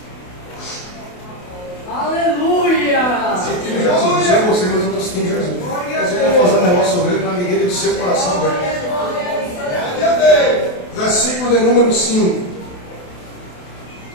Aleluia! Sentindo Jesus, não sei você, mas eu estou sentindo Jesus. Mas eu vou fazer um negócio sobre ele na medida do seu coração aberto. Versículo de número 5.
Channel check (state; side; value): late; right; 28 ms